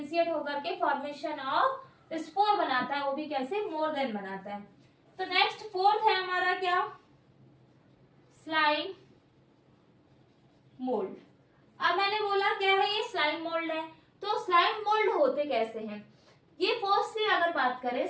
होकर के फॉर्मेशन ऑफ स्पोर बनाता है, वो भी कैसे, मोर देन बनाता है। तो नेक्स्ट फोर्थ है हमारा क्या, स्लाइम मोल्ड। अब मैंने बोला क्या है, ये स्लाइम मोल्ड है। तो स्लाइम मोल्ड होते कैसे हैं, ये फर्स्टली अगर बात करें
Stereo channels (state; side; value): identical; both; correlation 1.00